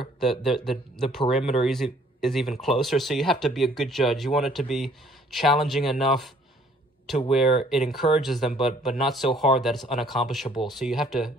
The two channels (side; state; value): both; normal; correlation 0.60